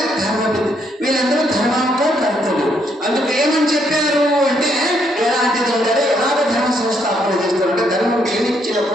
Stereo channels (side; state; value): both; normal; correlation 0.73